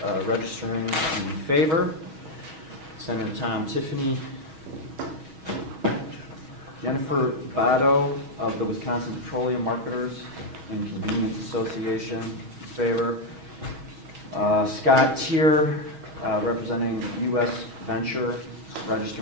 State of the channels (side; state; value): left; late; 6.3 ms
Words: registering in favor. Senator Tom Tiffany, Jennifer Bado of the Wisconsin Petroleum Marketers and Convenience Association, in favor. Scott Tier, representing U.S. Venture,